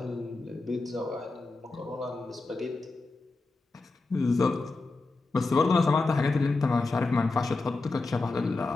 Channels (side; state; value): right; quieter; 3.5 dB